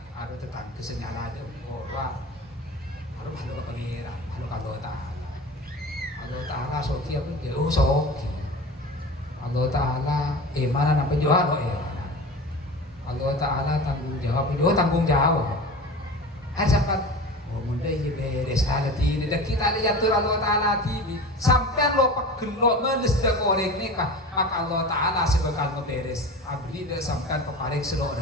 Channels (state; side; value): normal; both; correlation 0.33